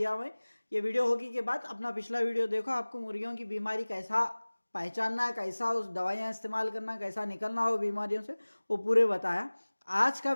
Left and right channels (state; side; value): inverted; both; correlation -1.00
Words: हुआ है, ये वीडियो होगी के बाद अपना पिछला वीडियो देखो, आपको मुर्गियों की बीमारी कैसा पहचानना है, कैसा उस दवाइयाँ इस्तेमाल करना, कैसा निकलना हो बीमारियों से, वो पूरे बताया। आज का